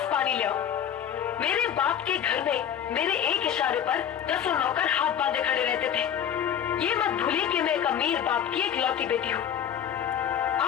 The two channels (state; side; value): quieter; right; 9.1 dB